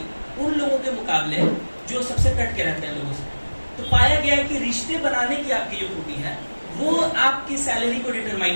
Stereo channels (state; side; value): inverted; both; correlation -1.00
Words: उन लोगों के मुकाबले जो सबसे कट के रहते हैं लोगों से। तो पाया गया है कि रिश्ते बनाने की आपकी जो खूबी है वो आपकी सैलरी को